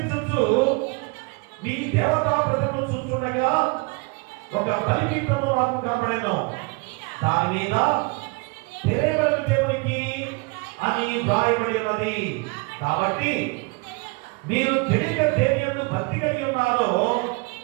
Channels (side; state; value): left; quieter; 28.7 dB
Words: మీ దేవతా ప్రజలను చూస్తుండగా ఒక బలిపీఠము నాకు కనబడెను. దాని మీద తెలియబడిన దేవునికి అని వ్రాయబడి ఉన్నది. కాబట్టి మీరు తెలియక దేని యందు భక్తి కలిగి ఉన్నారో